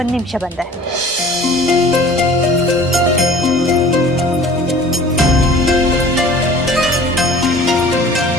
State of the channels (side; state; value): both; normal; correlation 0.46